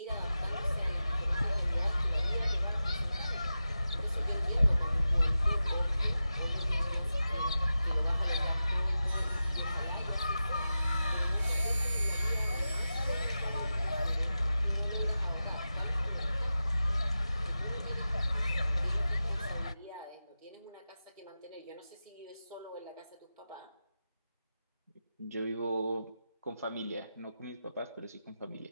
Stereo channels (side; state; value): both; inverted; correlation -0.93